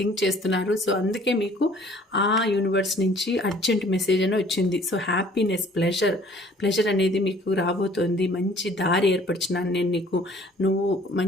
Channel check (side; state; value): both; normal; correlation 0.55